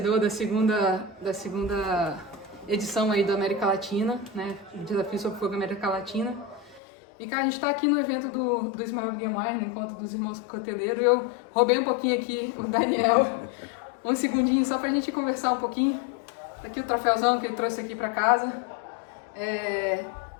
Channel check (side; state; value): right; drops out; at 6.8 s